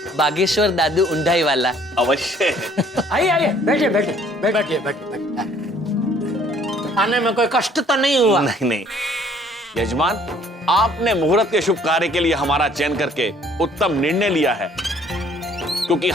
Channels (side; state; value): both; normal; correlation 0.59